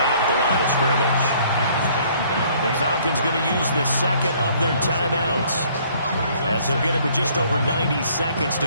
at the line of scrimmage. The Falcons going to use the second of their timeouts, as they'll get it with just over 90 seconds to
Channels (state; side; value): inverted; both; correlation -0.60